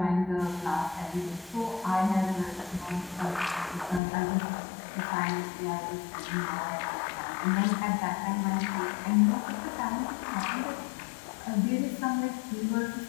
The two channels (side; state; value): right; drops out; at 4.0 s